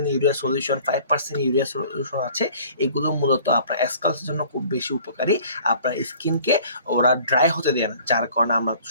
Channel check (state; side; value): inverted; both; correlation -0.51